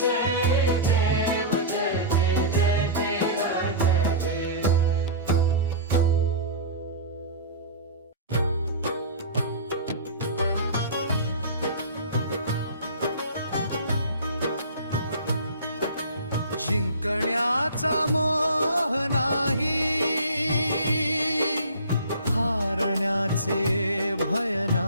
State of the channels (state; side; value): inverted; both; correlation -0.33